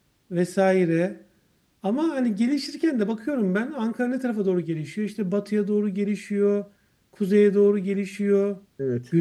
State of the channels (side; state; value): both; identical; correlation 1.00